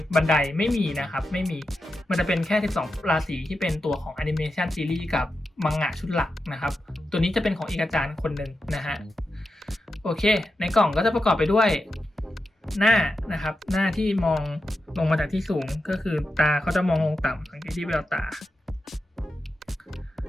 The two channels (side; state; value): both; normal; correlation 0.89